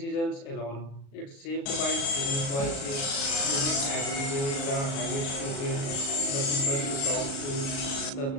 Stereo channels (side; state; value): right; late; 36 ms